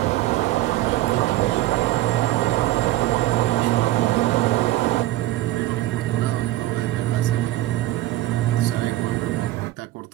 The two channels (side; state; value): left; quieter; 16.2 dB